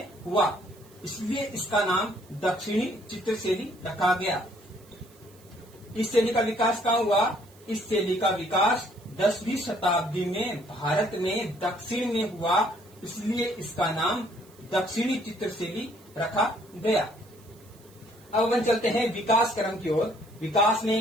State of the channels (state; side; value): noise; right; hiss, 27 dB below the sound